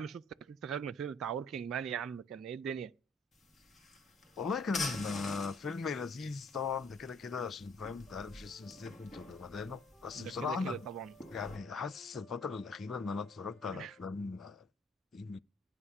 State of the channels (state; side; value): normal; both; correlation 0.60